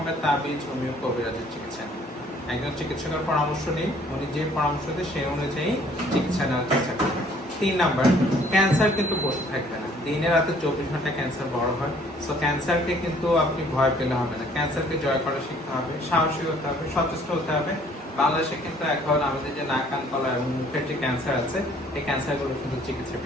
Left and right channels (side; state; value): both; normal; correlation 0.59